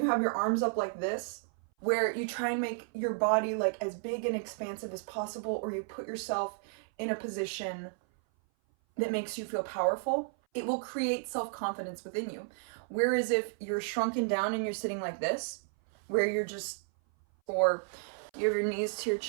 have your arms up like this, where you try and make your body like as big and expansive as possible, or you put yourself in a position that makes you feel powerful, it will create self-confidence within you. Whereas if you're shrunken down and you're sitting like this, where you're just, or you have your knees to your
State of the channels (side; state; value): left; silent; 56 dB below the other